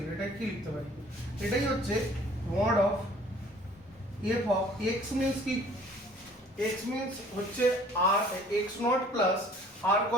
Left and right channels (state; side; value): normal; both; correlation 0.53